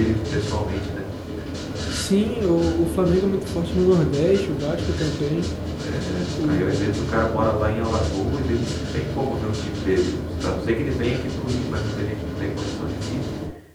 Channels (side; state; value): both; identical; correlation 1.00